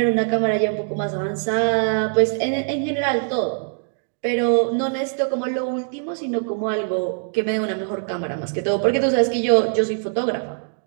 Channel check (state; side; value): silent; left; 64 dB below the other